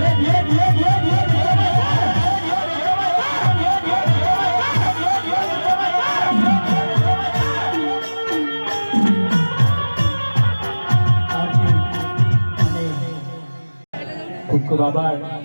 ખૂબ ખૂબ આભાર.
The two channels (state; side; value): inverted; both; correlation -1.00